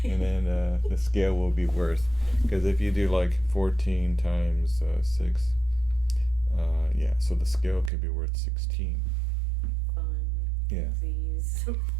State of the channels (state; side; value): drops out; left; at 7.9 s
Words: and then the scale will be worth, because if you do like 14 times 6, yeah, so the scale could be worth 16. Fun. Yeah. Please.